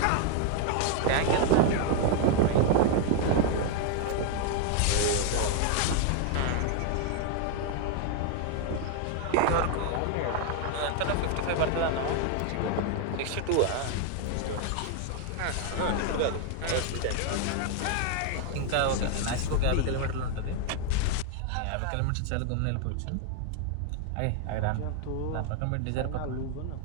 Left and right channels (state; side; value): different; both; correlation 0.00